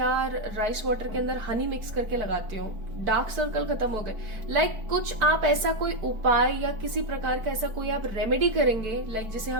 राइस वाटर के अंदर हनी मिक्स करके लगाती हूँ, डार्क सर्कल खत्म हो गए। लाइक कुछ आप ऐसा कोई उपाय या किसी प्रकार का ऐसा कोई आप रेमेडी करेंगे, लाइक जिसे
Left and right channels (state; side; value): late; left; 4.6 ms